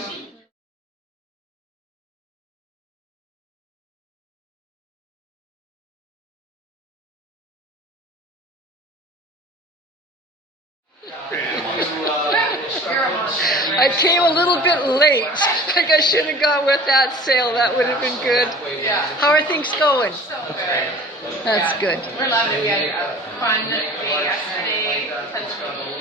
I came a little bit late. Like I should have gone with that sale. That would have been good. How are things going? That's good. We're loving it. We had a fun day yesterday.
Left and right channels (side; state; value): both; normal; correlation 0.43